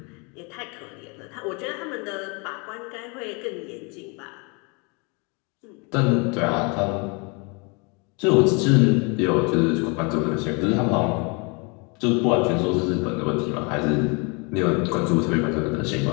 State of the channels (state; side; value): quieter; right; 31.4 dB